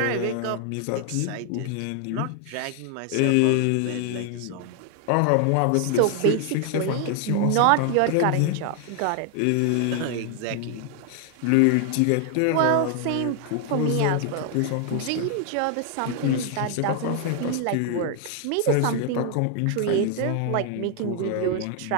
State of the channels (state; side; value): different; both; correlation 0.00